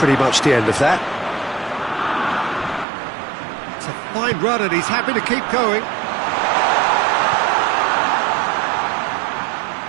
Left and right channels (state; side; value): drops out; left; at 2.9 s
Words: much the end of that. It's a fine run and he's happy to keep going.